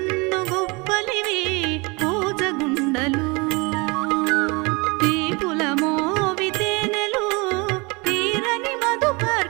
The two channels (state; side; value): quieter; left; 27.7 dB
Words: గొప్పలివి భోజగుండలు తీపుల మోవితేనెలు తీరని